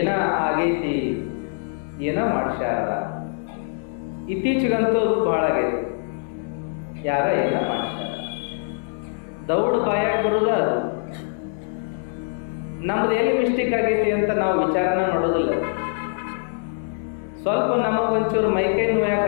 ಆಗೈತಿ, ಏನ ಮಾಡ್ಸ್ಯಾರ. ಇತ್ತೀಚೆಗಂತೂ ಬಹಳ ಆಗೈತಿ, ಯಾರ ಏನ ಮಾಡ್ಸ್ಯಾರ. ದೌಡ್ ಬಾಯಾಗ ಬರುದ ಅದು. ನಮ್ದು ಎಲ್ಲಿ ಮಿಸ್ಟೇಕ್ ಆಗೈತಿ ಅಂತ ನಾವು ವಿಚಾರಣೆ ಮಾಡೋದಿಲ್ಲ. ಸ್ವಲ್ಪ ನಮಗೊಂಚೂರು ಮೈಕೈ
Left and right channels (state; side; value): silent; right; 63 dB below the other